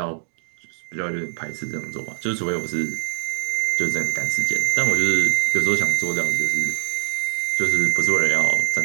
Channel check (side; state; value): left; silent; digital silence